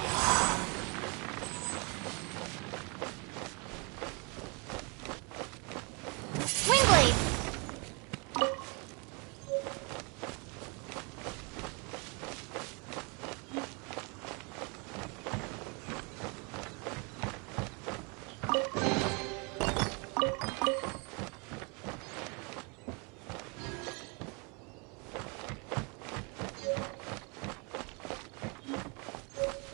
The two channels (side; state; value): left; quieter; 31.8 dB